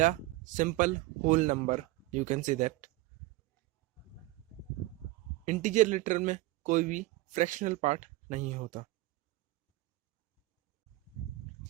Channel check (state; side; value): quieter; left; 19.1 dB